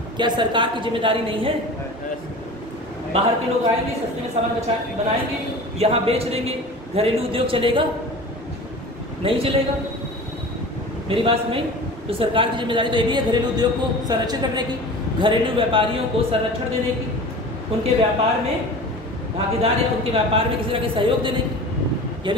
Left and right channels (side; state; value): both; normal; correlation 0.37